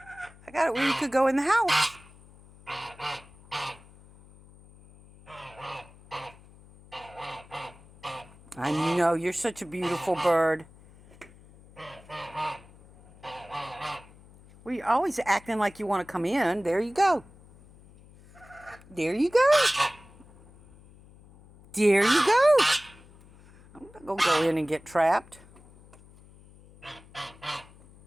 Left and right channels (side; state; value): left; noise; hum, 24 dB below the sound